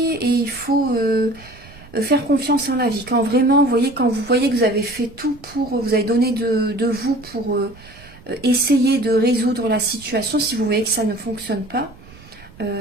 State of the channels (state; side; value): noise; right; rumble, 22 dB below the sound